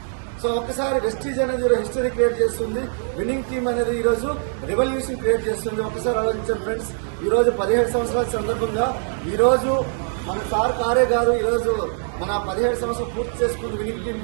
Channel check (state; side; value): silent; left; 64 dB below the other